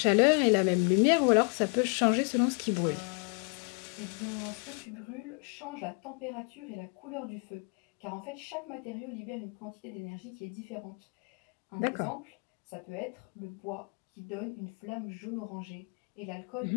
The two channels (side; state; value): right; quieter; 36.3 dB